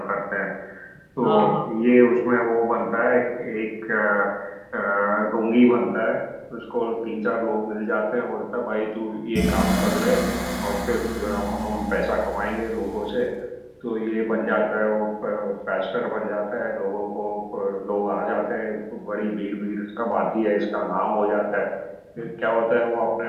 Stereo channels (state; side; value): identical; both; correlation 1.00